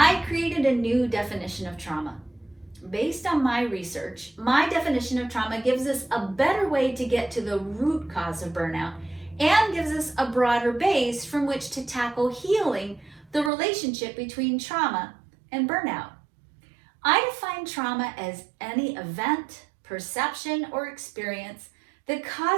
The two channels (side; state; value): left; drops out; at 13.5 s